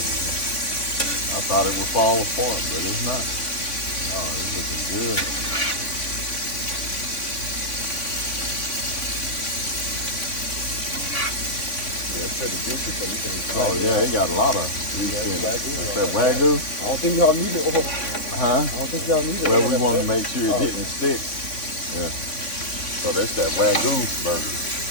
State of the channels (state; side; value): late; right; 3.5 ms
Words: I thought it would fall apart, but it's not. Oh, it's looking good. Yeah, it's pretty juicy, so you can. Oh yeah, it got a lot of grease in it. That's that Wagyu. I don't think y'all need it. Huh? I don't think y'all need it. Well, we want to make sure it didn't stick. Yeah. So that's that Wagyu burger.